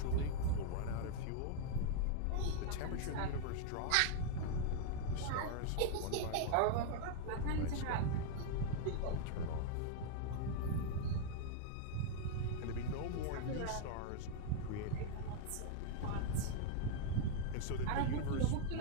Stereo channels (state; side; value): different; both; correlation 0.00